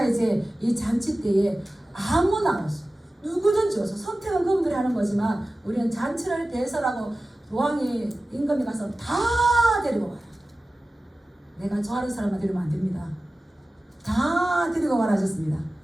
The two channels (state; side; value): normal; both; correlation 0.96